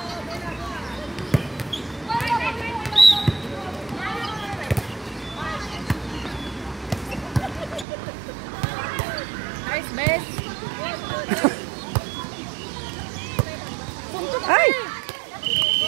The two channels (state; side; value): drops out; left; at 7.9 s